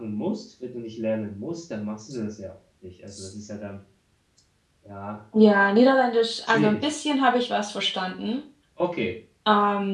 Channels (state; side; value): identical; both; correlation 1.00